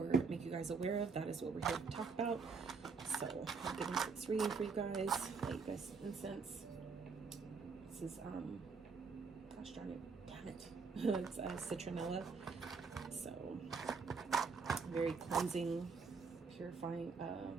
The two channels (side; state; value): left; quieter; 5.0 dB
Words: make you guys aware of, that is what we're here to talk about. So I'll get into this reading for you guys. Light you guys some incense. This is gosh darn it, damn it. It's citronella. So very cleansing, purifying